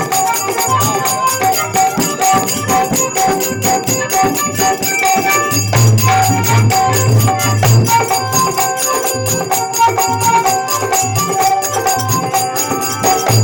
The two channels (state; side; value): identical; both; correlation 1.00